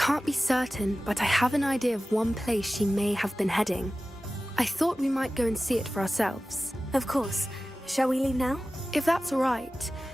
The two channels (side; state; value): both; normal; correlation 0.96